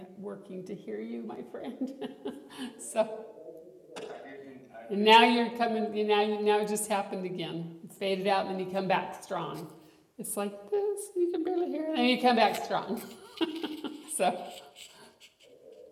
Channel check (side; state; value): both; identical; correlation 1.00